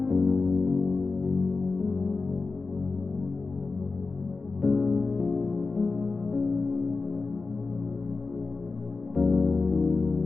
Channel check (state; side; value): quieter; right; 4.0 dB